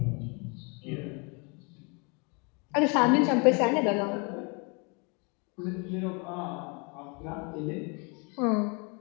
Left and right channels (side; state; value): right; quieter; 32.5 dB